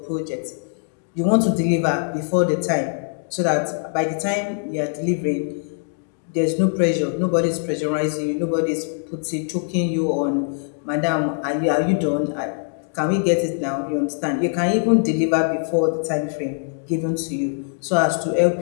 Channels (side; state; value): right; silent; digital silence